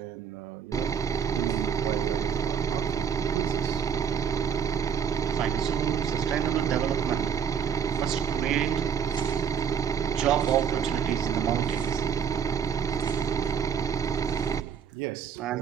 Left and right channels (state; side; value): quieter; left; 7.5 dB